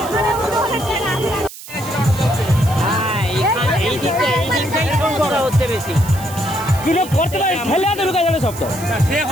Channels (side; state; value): right; noise; hiss, 15 dB below the sound